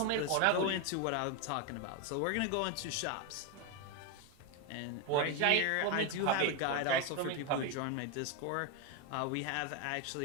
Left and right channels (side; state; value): both; different; correlation 0.02